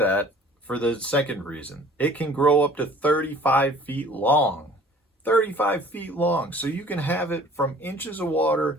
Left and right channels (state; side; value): normal; both; correlation 0.50